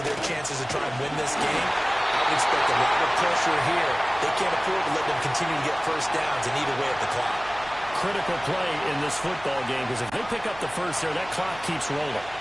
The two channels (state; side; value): noise; right; hum, 19 dB below the sound